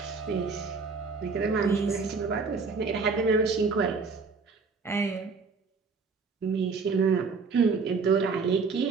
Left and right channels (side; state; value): left; quieter; 4.7 dB